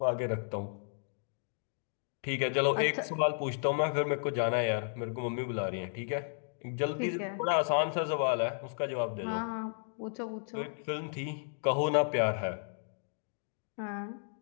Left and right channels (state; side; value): silent; right; digital silence